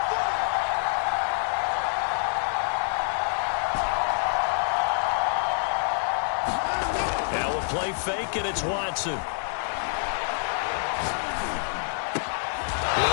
Now a play fake, and it's Watson.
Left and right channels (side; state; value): right; silent; digital silence